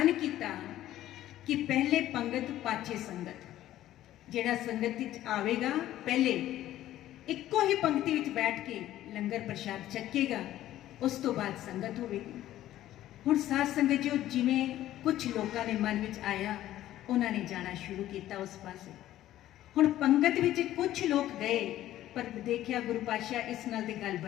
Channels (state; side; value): quieter; right; 13.5 dB